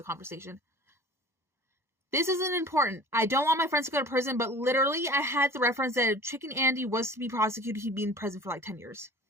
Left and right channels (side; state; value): left; late; 1.1 ms